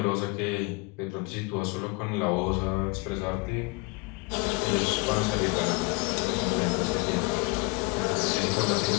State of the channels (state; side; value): quieter; right; 26.7 dB